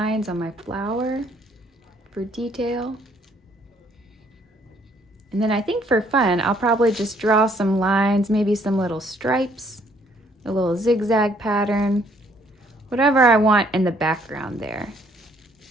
on my flower for detail. And then I think for fun, I'll probably just draw some lines, maybe some little stripes, a little zigzag pattern, whatever I want in the background there.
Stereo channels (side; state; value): both; normal; correlation 0.65